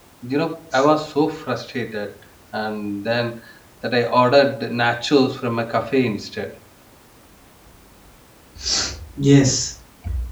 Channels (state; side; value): identical; both; correlation 1.00